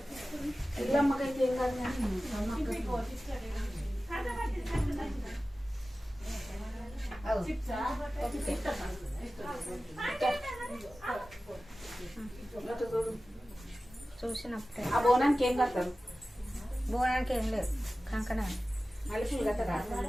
ఇల్లమ్మకైతే ఏం కాదు. చూసినప్పుడే ఆ బోనానికి ఏం కడతారు? బోనానికి ఏం లేదు, కంకణ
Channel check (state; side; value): normal; both; correlation 0.96